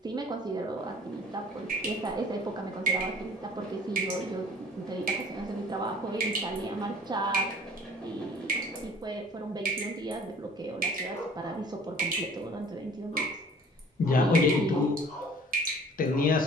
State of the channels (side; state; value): both; normal; correlation 0.50